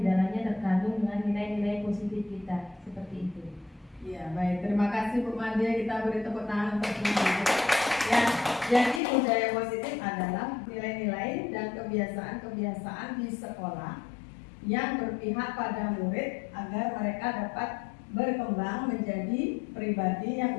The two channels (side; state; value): right; drops out; at 9.0 s